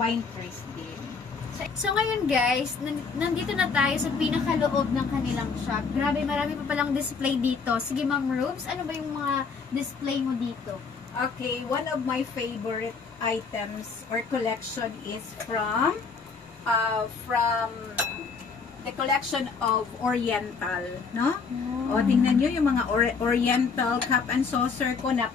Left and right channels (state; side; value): quieter; right; 5.1 dB